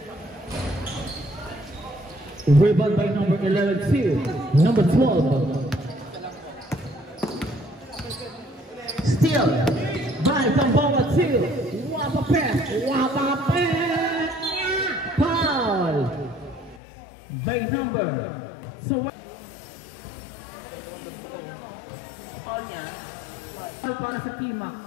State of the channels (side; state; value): right; drops out; at 16.8 s